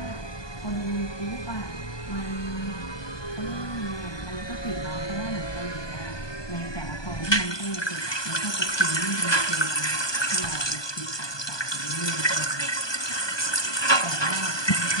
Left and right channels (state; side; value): late; right; 1.2 ms